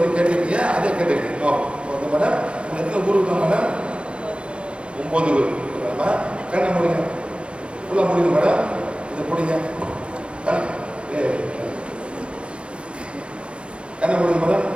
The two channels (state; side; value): late; left; 0.058 ms